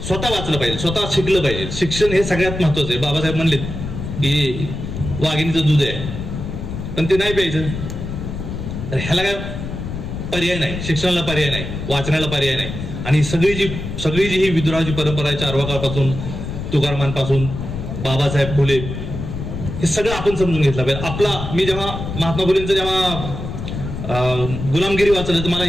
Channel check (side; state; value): left; noise; rumble, 6 dB below the sound